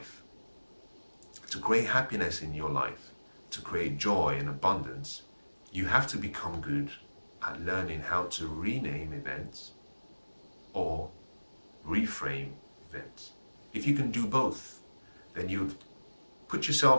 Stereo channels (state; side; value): inverted; both; correlation -1.00